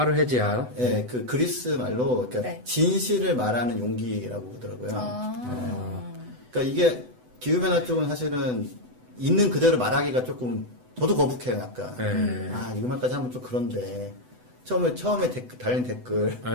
그 그리스 말로 그러니까 네. 진실을 말하는 용기라고 그러더라고요. 그러니까 이게 기후변화 쪽은 사실은 있는 그대로 말하기가 조금 저도 거북해요, 약간. 네. 이거 말까지 하면 좀 그런데 처음에 달린 댓글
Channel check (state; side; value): late; left; 8.0 ms